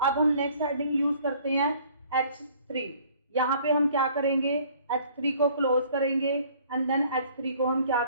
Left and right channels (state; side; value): inverted; both; correlation -0.56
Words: अब हम नेक्स्ट हेडिंग यूज करते हैं H3। यहाँ पे हम क्या करेंगे, H3 को क्लोज करेंगे, एंड देन H3 को हम क्या